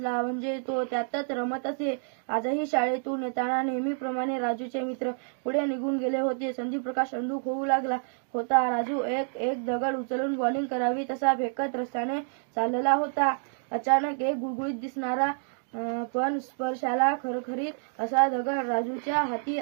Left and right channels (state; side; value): silent; left; 59 dB below the other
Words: म्हणजे तो त्यातच रमत असे. आजही शाळेतून येताना नेहमीप्रमाणे राजूचे मित्र पुढे निघून गेले होते. संदीपप्रकाश अंधुक होऊ लागला होता. राजू एक दगड उचलून बॉलिंग करावी तसा फेकत रस्त्याने चालला होता. अचानक एक गुळगुळीत दिसणारा पण स्पर्शाला खरखरीत असा दगड राजूच्या हाती